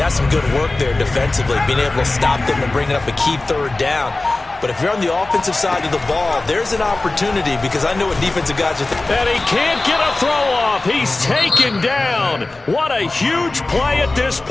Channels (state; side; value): quieter; right; 3.1 dB